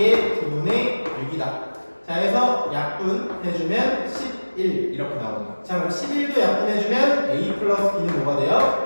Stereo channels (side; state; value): both; inverted; correlation -1.00